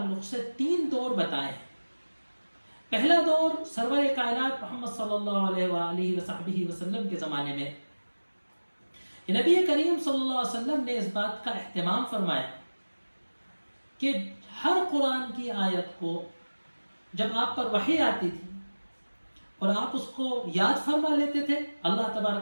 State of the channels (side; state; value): both; inverted; correlation -1.00